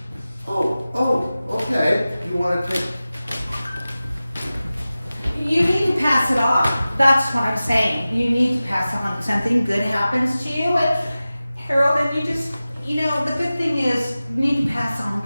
Oh, okay. You want to take... You need to pass it on. That's what I'm saying. You need to pass on. Something good happens to you, and Harold, and you just, you know, the good thing is you need to pass on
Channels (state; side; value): inverted; both; correlation -0.96